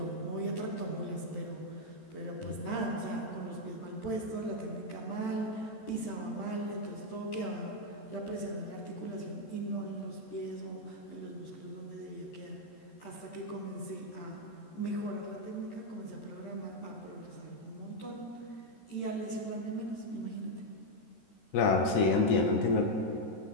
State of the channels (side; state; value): right; late; 14 ms